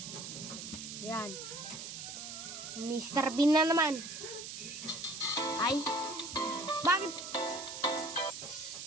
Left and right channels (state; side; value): noise; right; hiss, 8 dB below the sound